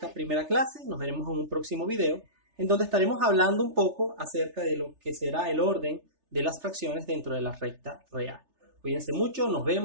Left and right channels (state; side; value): late; left; 3.3 ms